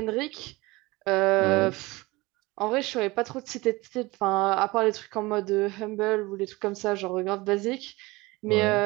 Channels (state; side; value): quieter; left; 22.1 dB